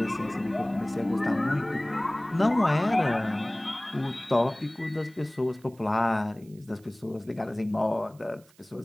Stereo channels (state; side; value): noise; right; hiss, 29 dB below the sound